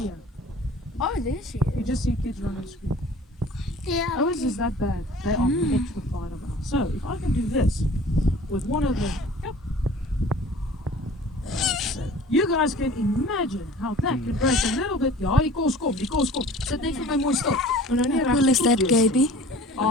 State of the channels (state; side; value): normal; both; correlation 0.46